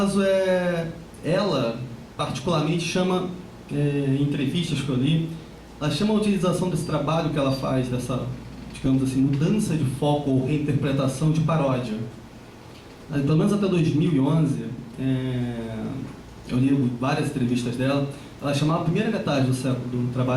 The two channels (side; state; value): both; identical; correlation 1.00